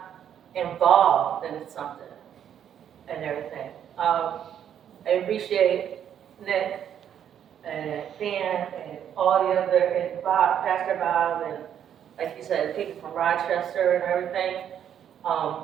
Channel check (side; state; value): left; quieter; 9.4 dB